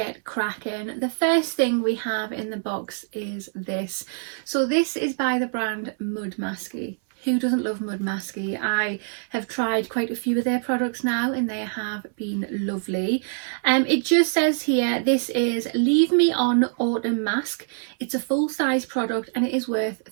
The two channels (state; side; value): silent; left; 60 dB below the other